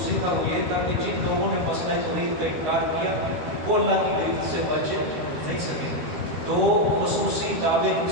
تھا وہ یہ تھا کہ جن لوگوں نے مسئلہ توحید کا انکار کیا وہ اللہ کی گرفت سے بچ نہیں سکیں گے. 2 خصوصی دعوے اس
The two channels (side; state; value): left; late; 13 ms